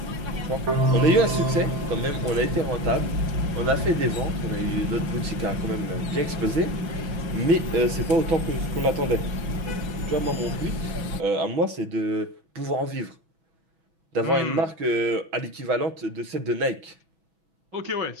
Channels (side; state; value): left; late; 6.1 ms